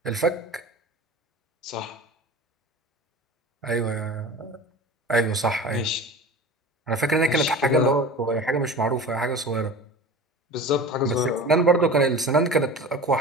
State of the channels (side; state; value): both; normal; correlation 0.36